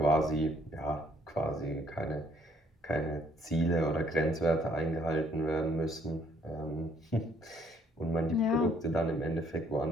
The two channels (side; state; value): both; normal; correlation 0.65